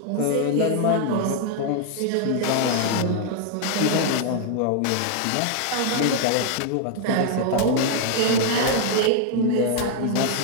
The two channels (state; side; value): different; both; correlation 0.00